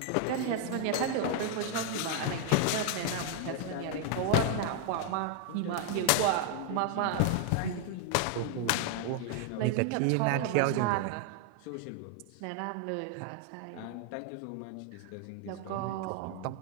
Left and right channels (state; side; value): different; both; correlation 0.00